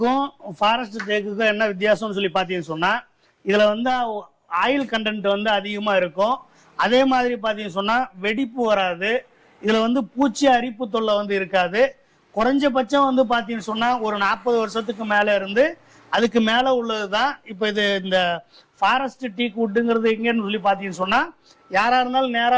ஃபாரஸ்ட் தேக்குக்கும் என்ன வித்தியாசம்னு சொல்லி பார்த்தீங்கன்னு சொன்னா இதுல வந்து ஆயில் கண்டென்ட் வந்து அதிகமா இருக்கும். அதே மாதிரி பார்த்தீங்கன்னு சொன்னா வெடிப்பு வராது. இதுல வந்து பூச்சி அரிப்பு தொல்லை வந்து இருக்காது. குறைஞ்சபட்சம் வந்து பார்த்தீங்கன்னு சொன்னா ஒரு 40 வருஷத்துக்கு மேல இருந்து அதுக்கு மேல உள்ளதுதான். இப்போ இது இந்த ஃபாரஸ்ட் டீக்வுட்டுங்கிறது எங்கன்னு சொல்லி பார்த்தீங்கன்னு சொன்னா யாரா இருந்தாலும்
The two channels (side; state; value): both; identical; correlation 1.00